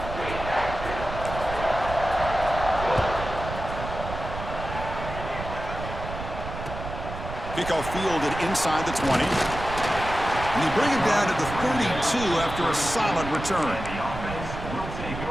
Kickoff fielded inside the 20. And they bring it down to the 32 after a solid return. The offense will take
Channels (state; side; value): noise; right; rumble, 8 dB below the sound